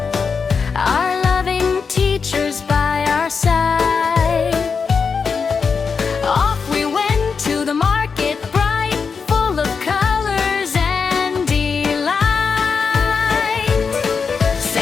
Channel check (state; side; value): quieter; right; 5.5 dB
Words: our loving teachers by our side. Off we went to the market, bright, full of colors and delight.